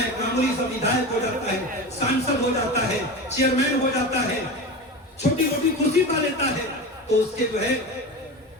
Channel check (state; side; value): normal; both; correlation 0.27